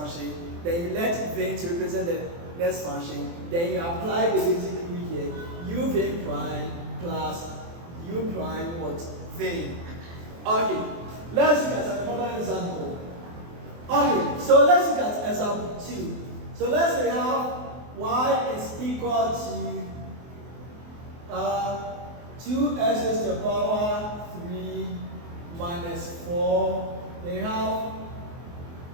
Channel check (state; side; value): late; left; 24 ms